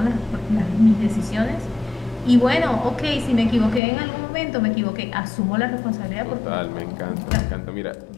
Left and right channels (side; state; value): right; drops out; at 3.8 s